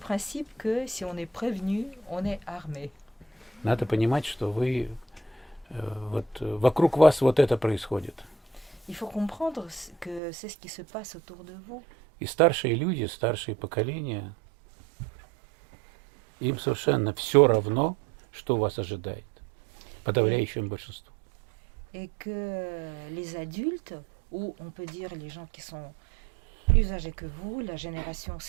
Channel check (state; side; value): drops out; left; at 10.2 s